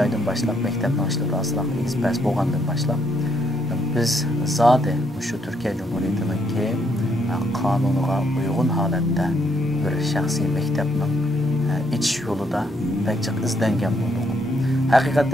başlap mektepni açılıp asılaq ekspress bolgandan başlap biz zade şu Türkiye Cumhuriyeti'ninki kanunuga uygun halatda bir şahsi mektepning iç yolida pek izlengen boldik.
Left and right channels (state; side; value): normal; both; correlation 0.73